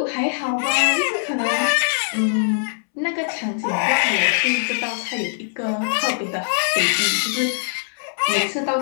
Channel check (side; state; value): right; silent; 65 dB below the other